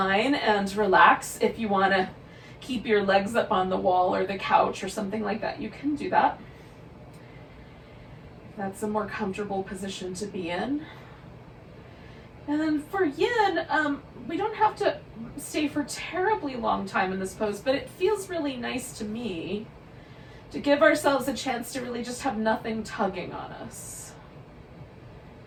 and relax. If you want to keep your legs up on the wall or the couch or something like that, you can do that. That's a more comfortable position to be in. And then for Yin, we don't have to stay for terribly long time in this pose, but it feels really nice to me to give ourselves a chance to really just have nothing tugging on us.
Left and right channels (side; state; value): both; identical; correlation 1.00